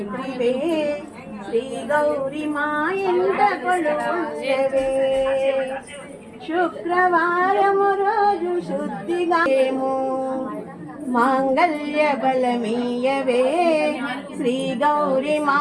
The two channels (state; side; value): identical; both; correlation 1.00